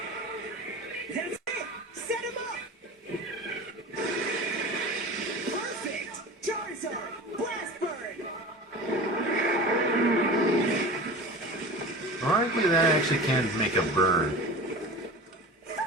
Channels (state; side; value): normal; both; correlation 0.34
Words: That's it! Set him up! Perfect! Charizard! Blast Burn! Ironically, that actually can't make a burn.